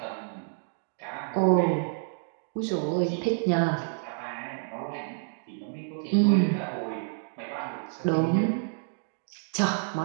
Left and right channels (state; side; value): silent; left; digital silence